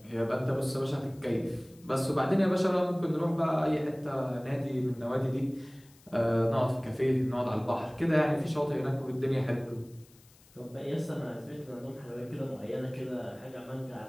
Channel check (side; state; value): left; noise; hiss, 27 dB below the sound